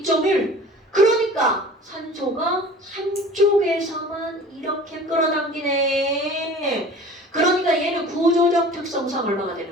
그러니까 산소가 한쪽에서만 이렇게 끌어당기네. 그러니까 얘는 구조적 특성상 얼마가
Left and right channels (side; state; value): both; normal; correlation 0.43